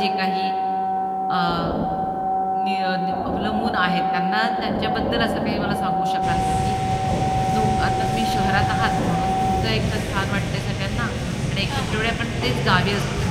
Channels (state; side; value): identical; both; correlation 1.00